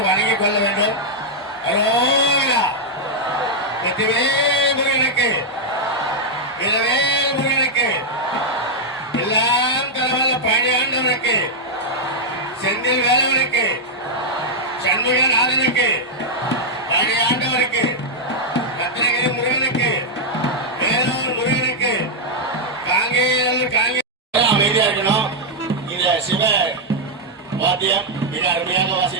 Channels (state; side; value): normal; both; correlation -0.03